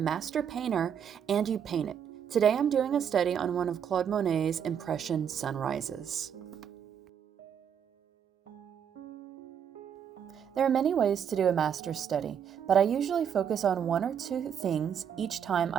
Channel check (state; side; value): quieter; left; 8.2 dB